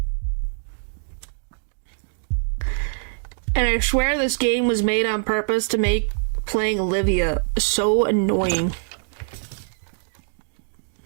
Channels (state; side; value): silent; left; digital silence